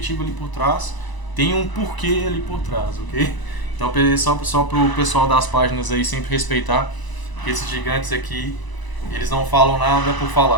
ali por trás, tem um porquê ali por trás, ok? Então, só pro pessoal das páginas aí sempre respeitar, porque esses gigantes aqui, eles não falam nada por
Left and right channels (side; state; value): right; late; 1.0 ms